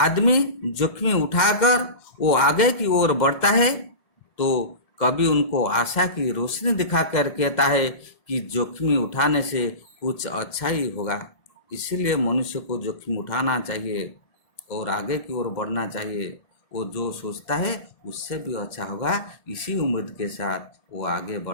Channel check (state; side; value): late; right; 2.0 ms